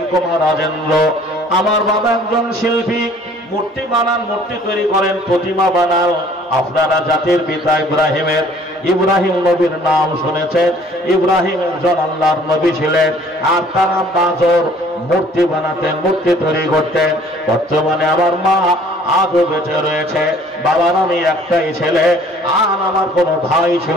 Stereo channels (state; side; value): normal; both; correlation 0.55